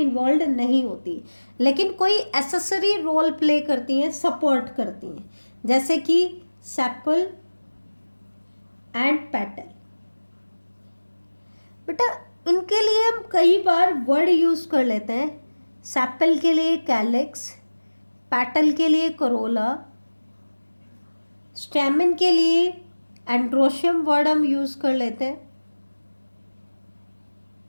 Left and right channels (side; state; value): both; inverted; correlation -1.00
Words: नहीं होती, लेकिन कोई एसेसरी रोल प्ले करती हैं, सपोर्ट करती हैं, जैसे कि सेपल एंड पेटल। बेटा इनके लिए हम कई बार वर्ड यूज कर लेते हैं। सेपल के लिए कैलिक्स, पेटल के लिए करोला, स्टेमन के लिए एंड्रोशियम वर्ड हम यूज कर लेते हैं,